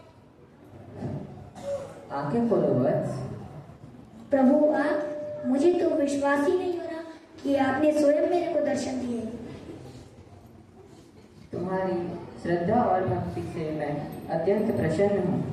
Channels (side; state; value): both; identical; correlation 1.00